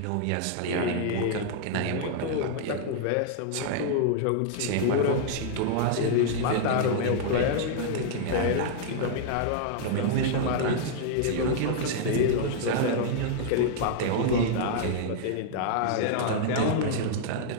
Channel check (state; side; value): different; both; correlation -0.01